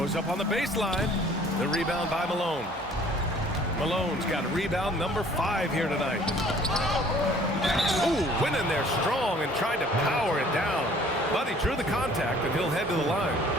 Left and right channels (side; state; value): both; normal; correlation 0.54